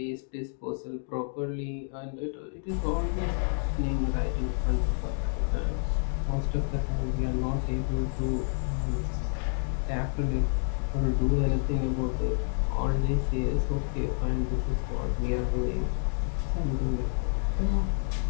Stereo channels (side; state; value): right; silent; 59 dB below the other